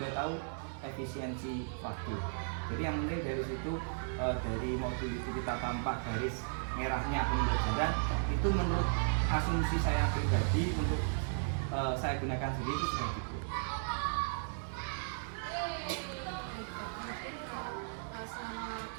tahu efisiensi waktu. Jadi yang penting dari situ, dari modul itu kita tampak garis merahnya pembelajaran, itu menurut asumsi saya pribadi untuk saya gunakan sendiri itu sudah cukup. Selama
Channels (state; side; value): silent; left; digital silence